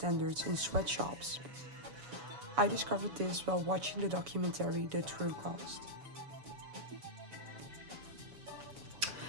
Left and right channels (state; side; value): late; left; 7.1 ms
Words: in sweatshops. I discovered this while watching the documentary The True Cost.